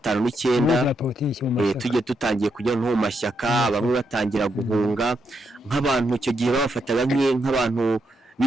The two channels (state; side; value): normal; both; correlation 0.81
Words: tujye tutangiye kujya no mu mashyaka bamwe batangira guhunga nk'abantu icyo gihe babafataga nk'abantu